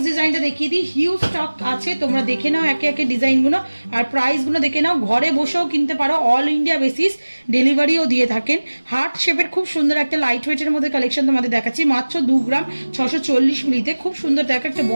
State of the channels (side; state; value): both; inverted; correlation -1.00